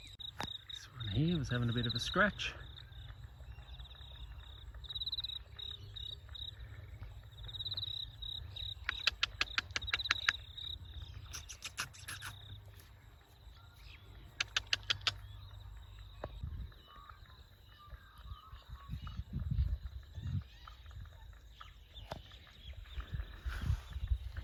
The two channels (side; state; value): both; identical; correlation 1.00